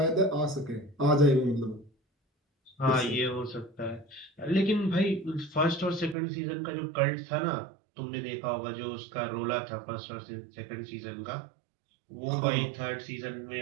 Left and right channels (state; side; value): drops out; left; at 6.2 s